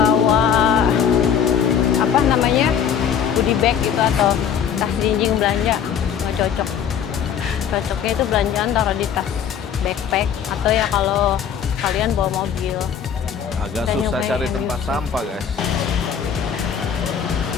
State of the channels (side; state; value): right; quieter; 8.0 dB